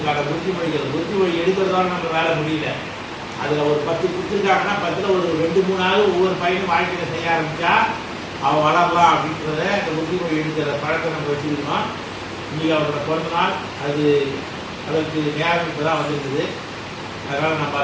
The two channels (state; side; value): identical; both; correlation 1.00